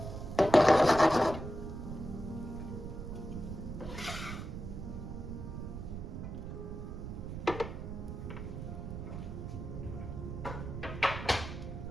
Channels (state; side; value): noise; right; rumble, 7 dB below the sound